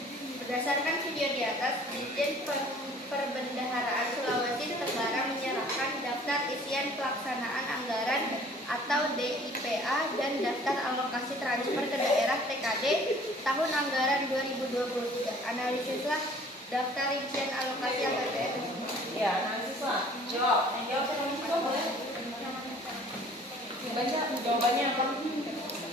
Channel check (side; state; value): both; normal; correlation 0.52